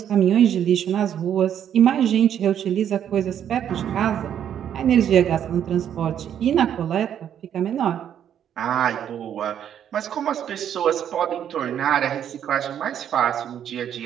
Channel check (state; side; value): quieter; left; 9.5 dB